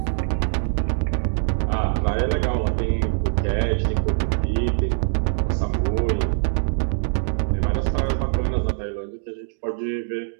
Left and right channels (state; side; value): silent; left; 63 dB below the other